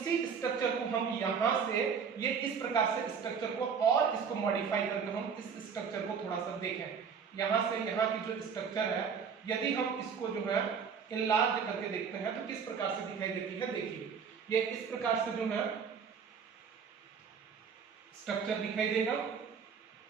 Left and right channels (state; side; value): quieter; left; 6.5 dB